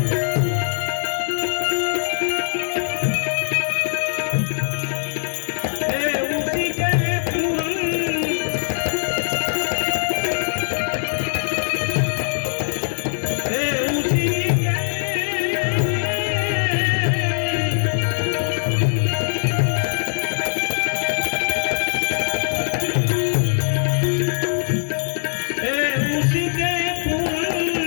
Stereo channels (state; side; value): silent; right; digital silence